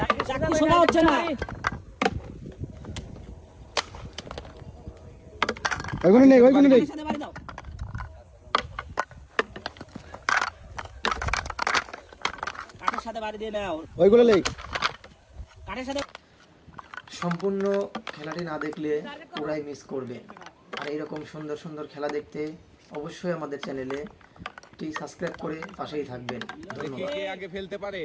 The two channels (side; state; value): both; identical; correlation 1.00